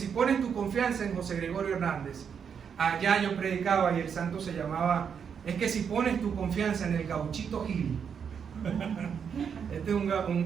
pones tu confianza en José Gregorio Hernández, allá yo predicaba y el santo se llamaba, es que si pones tu confianza en el Gauchito Gil. Este es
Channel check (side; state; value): left; quieter; 7.1 dB